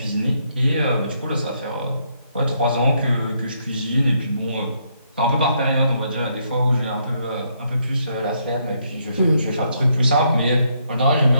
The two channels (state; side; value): inverted; both; correlation -0.74